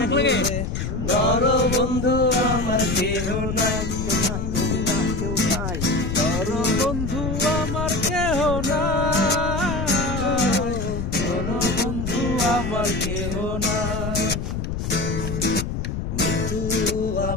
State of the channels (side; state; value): left; noise; rumble, 3 dB below the sound